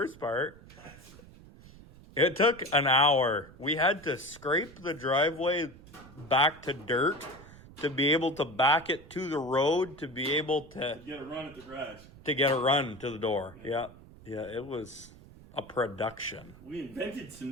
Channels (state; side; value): noise; right; rumble, 20 dB below the sound